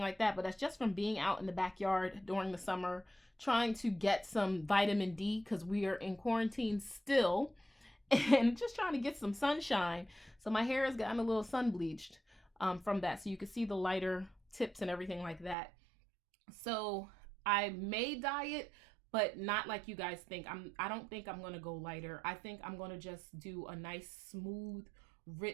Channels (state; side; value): drops out; left; at 15.6 s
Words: like that, but that's just from being out in the backyard during the summer, trying to get some vitamin D, because we are in quarantine still, and just trying to get some sunshine. So my hair has gotten a little sun bleached from that. So you can see the lighter tips and everything like that. So I may dye it, but not like you guys think. I don't think I'm going to go lighter. I think I'm going to just do a nice, smooth,